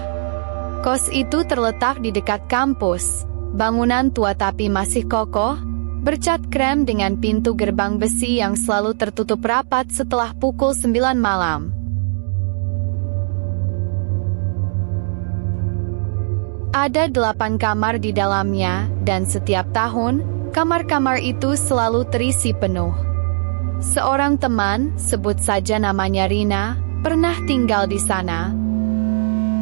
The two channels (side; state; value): left; silent; digital silence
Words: Kos itu terletak di dekat kampus, bangunan tua tapi masih kokoh, bercat krem dengan pintu gerbang besi yang selalu tertutup rapat setelah pukul 9 malam. Ada 8 kamar di dalamnya, dan setiap tahun, kamar-kamar itu selalu terisi penuh. Seorang teman, sebut saja namanya Rina, pernah tinggal di sana.